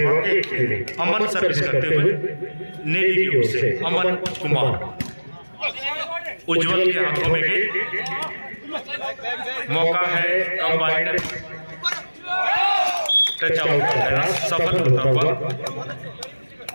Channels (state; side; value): inverted; both; correlation -1.00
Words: 1 के लिए अमन सर्विस करते हुए नेवी की ओर से अमन कुमार उज्जवल के हाथों में गई, मौका है कंबाइंड टच आउट का प्रयास सफल होता हुआ